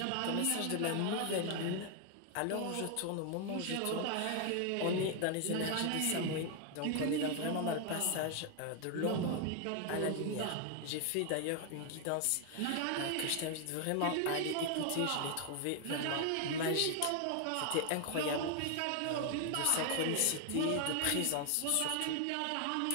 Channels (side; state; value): both; different; correlation 0.00